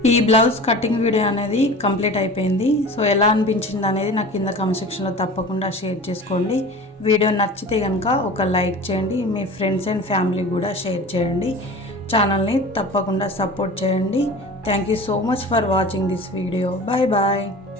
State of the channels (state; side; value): normal; both; correlation 0.37